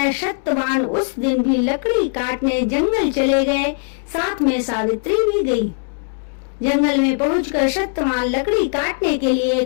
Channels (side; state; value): right; silent; 61 dB below the other